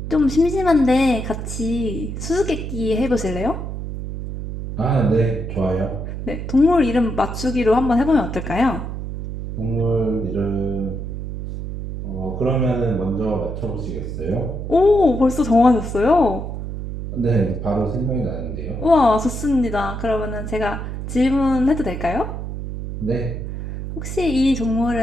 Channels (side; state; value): right; noise; hum, 6 dB below the sound